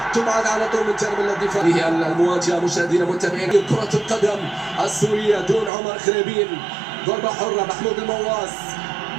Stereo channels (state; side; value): drops out; left; at 5.7 s